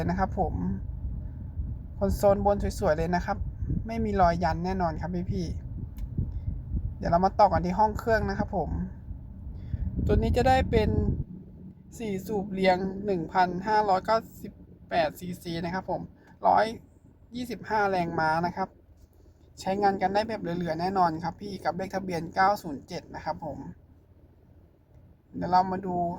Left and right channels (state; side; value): identical; both; correlation 1.00